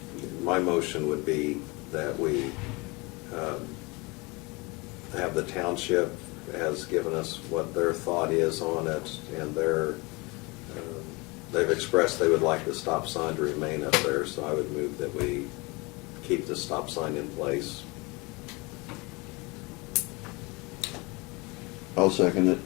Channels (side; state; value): right; quieter; 26.1 dB